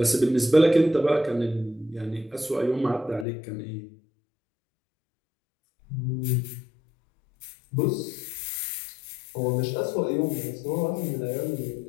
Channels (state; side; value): drops out; right; at 3.2 s